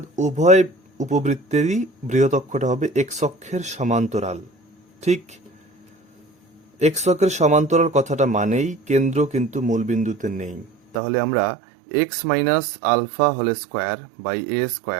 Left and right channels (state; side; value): drops out; left; at 11.0 s